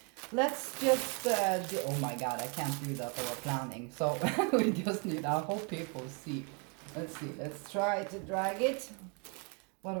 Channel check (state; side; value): quieter; left; 35.5 dB